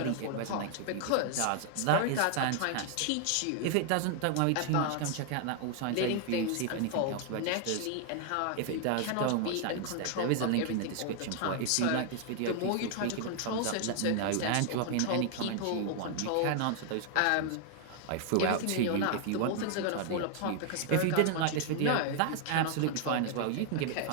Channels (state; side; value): different; both; correlation 0.00